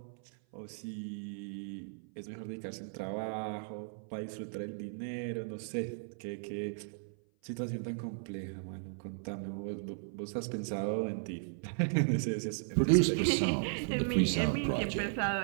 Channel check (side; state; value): left; silent; 54 dB below the other